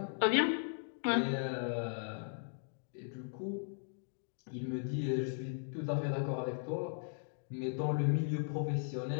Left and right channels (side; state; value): right; silent; digital silence